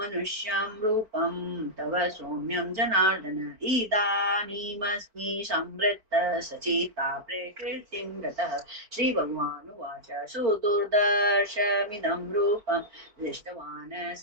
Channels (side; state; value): left; late; 4.5 ms